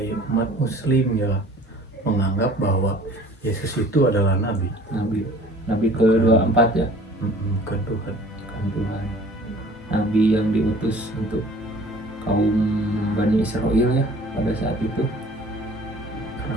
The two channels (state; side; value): normal; both; correlation 0.49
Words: umat muslim ya menganggap bahwa Yesus itu adalah nabi, Nabi ke-24 ya, bukan Tuhan. kan Tuhan. Nabi yang diutus untuk kaum Bani Israel ya pada saat itu. Karena